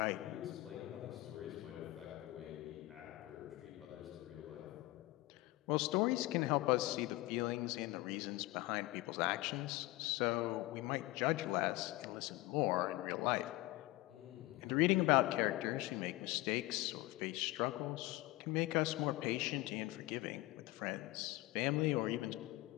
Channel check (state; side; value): quieter; right; 19.4 dB